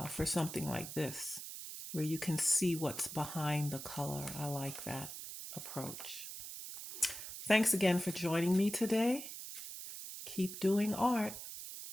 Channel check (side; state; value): right; noise; hiss, 9 dB below the sound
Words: for something like this, where you can see what's behind the color, I like that approach. Thanks again for joining me today. Keep doing art.